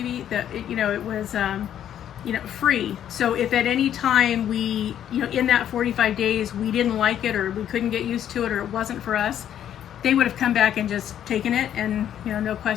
that, you know, it was, you know, free. So if at any time we, you know, in that 45 days we didn't like it, or we couldn't get used to it, or it wasn't for us, they would have come back and just taken it, and, you know, no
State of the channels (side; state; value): right; quieter; 10.3 dB